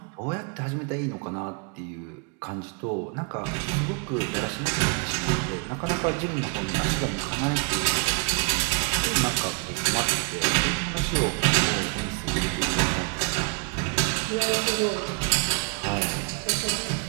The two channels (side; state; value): left; quieter; 34.2 dB